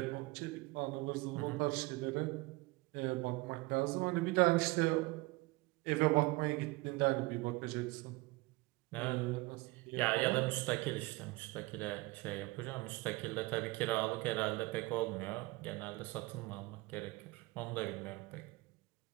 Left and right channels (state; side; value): quieter; left; 22.8 dB